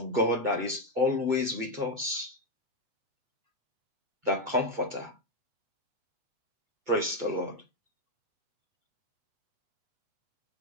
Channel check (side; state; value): left; late; 8.2 ms